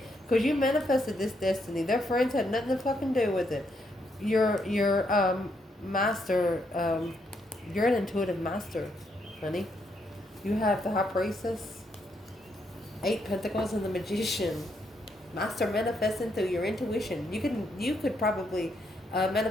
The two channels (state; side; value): normal; both; correlation 0.76